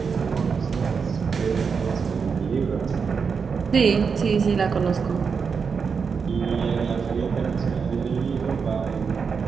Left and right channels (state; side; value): quieter; left; 5.8 dB